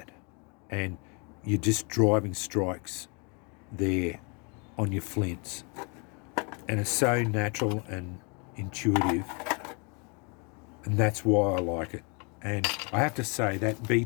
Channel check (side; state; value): right; quieter; 33.5 dB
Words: and you're just driving strikes there on your flints, and it's so natural and intuitive, and that's why I like it. And I have to say that B